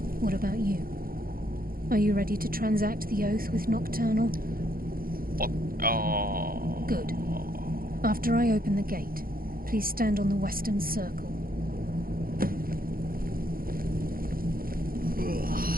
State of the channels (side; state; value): left; late; 0.42 ms